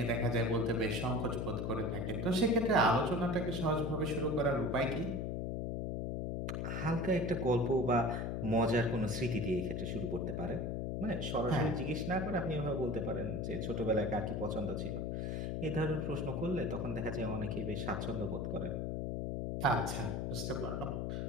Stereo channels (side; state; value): left; noise; hum, 1 dB below the sound